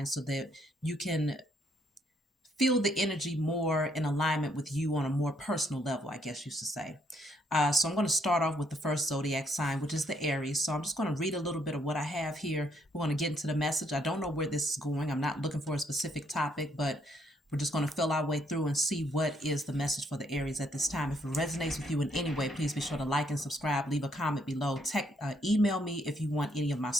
so that you can feel the energy more in alignment with you on a more personal level, I guess you should say. So I'm going to start off with the first zodiac sign, which is the Aries. So I'm just going to read a little bit of what I have here. We're going to get into the message. I don't know where this is going. I'm not looking for a specific topic, but we're just going to fill our way through and see what is the message for the Aries at this time. If it resonates with you in any way, please be sure to like and subscribe. Leave a comment below. Email me if you want any of my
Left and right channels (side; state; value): both; normal; correlation 0.71